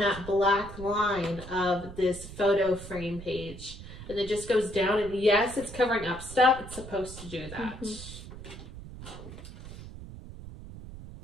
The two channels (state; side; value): noise; right; rumble, 13 dB below the sound